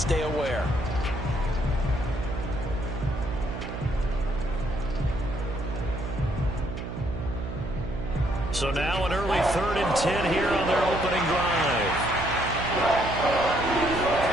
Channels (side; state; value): right; noise; hum, 7 dB below the sound